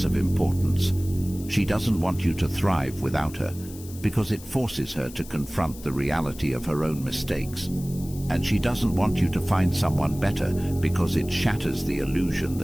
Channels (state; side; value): noise; left; hiss, 18 dB below the sound